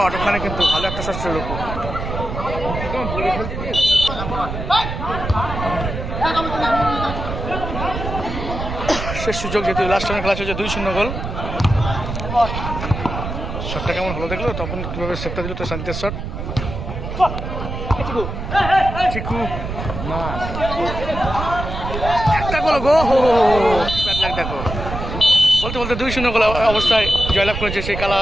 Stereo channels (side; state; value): right; noise; rumble, 6 dB below the sound